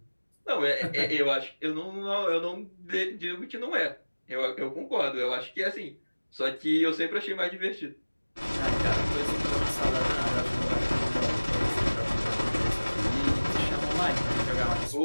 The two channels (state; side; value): inverted; both; correlation -1.00